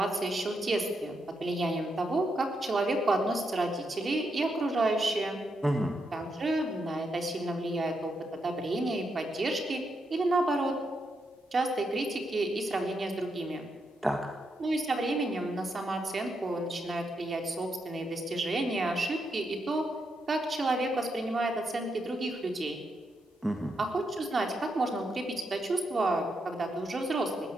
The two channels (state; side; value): normal; both; correlation 0.82